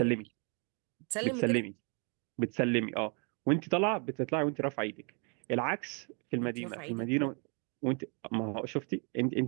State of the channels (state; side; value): quieter; left; 36.4 dB